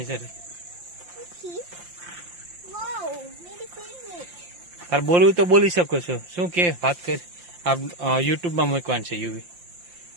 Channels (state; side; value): late; left; 5.7 ms